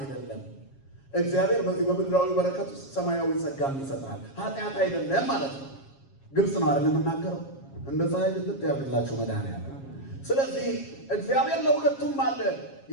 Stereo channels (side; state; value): right; late; 7.3 ms